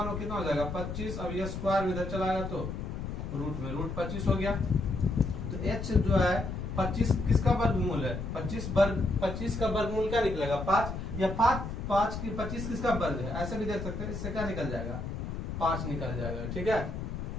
9 कितना हो जाएगा 25। अब ये स्क्वायर इधर चला आएगा तो रूट में रूट 25 हो गया। तो h जो है 25 किसका वर्गमूल है, 25 का वर्गमूल क्या निकलेगा 5, या 5 की 25 किसका वर्ग है, ऐसे भी देख सकते हैं। इससे क्या निकल जाएगा 5 निकल जाएगा। ठीक है,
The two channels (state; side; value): noise; left; rumble, 5 dB below the sound